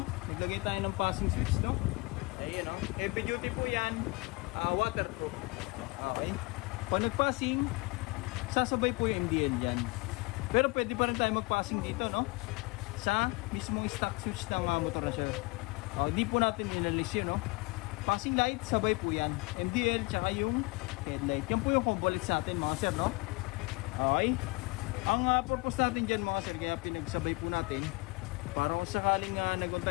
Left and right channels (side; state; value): right; quieter; 26.2 dB